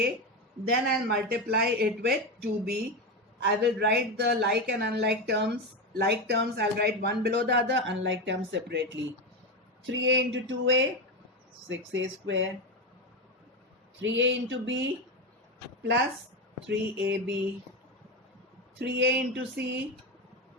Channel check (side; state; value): both; normal; correlation 0.15